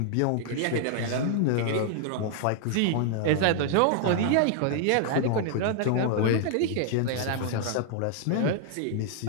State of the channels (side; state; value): both; different; correlation 0.00